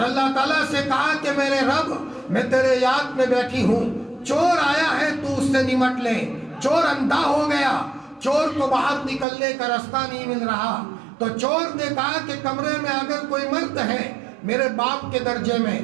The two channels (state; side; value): drops out; left; at 9.2 s